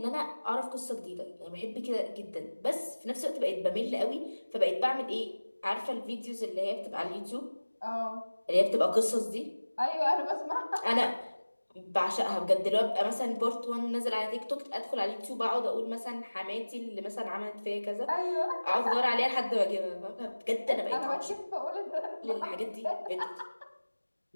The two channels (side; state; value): both; inverted; correlation -1.00